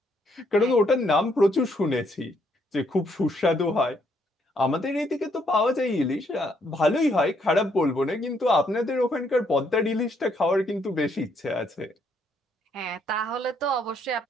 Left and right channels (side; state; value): both; normal; correlation 0.72